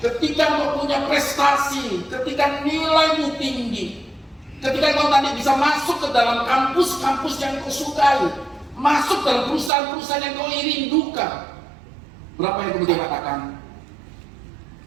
engkau punya prestasi, ketika nilaimu tinggi, ketika kau nanti bisa masuk ke dalam kampus-kampus yang kau sukai, masuk dalam perusahaan-perusahaan yang kau rindukan, berapa yang kemudian katakan,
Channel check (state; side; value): drops out; left; at 9.7 s